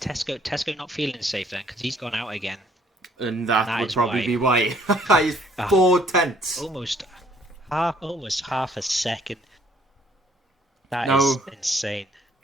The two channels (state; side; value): normal; both; correlation 0.62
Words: not feeling safe then? Because he's gone out again. And that would probably be why. He's 4 tenths. Almost half a second. That is insane.